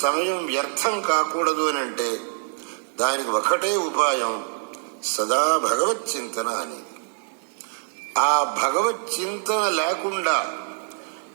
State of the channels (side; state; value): left; silent; 62 dB below the other